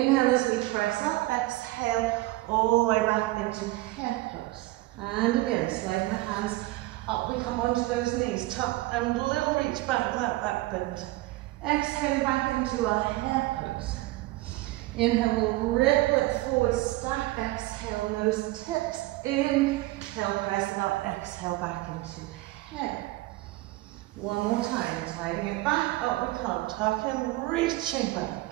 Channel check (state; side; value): quieter; left; 18.9 dB